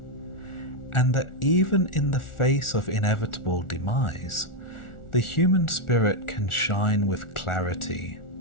and that even in the face of inevitable demise, the human spirit can shine with clarity,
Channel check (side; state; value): right; late; 1.4 ms